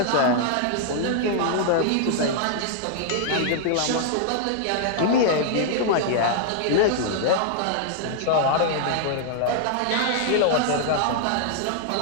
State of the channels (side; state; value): both; different; correlation -0.01